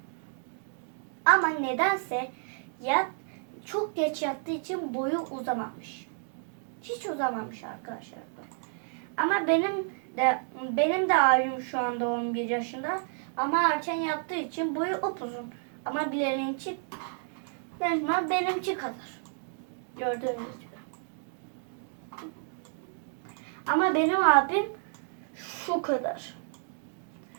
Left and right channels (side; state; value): left; silent; 57 dB below the other